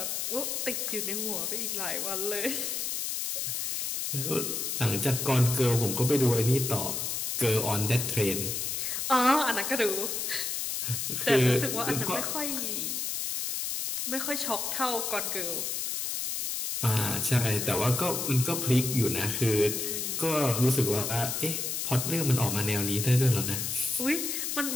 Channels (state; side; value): noise; left; hiss, 2 dB below the sound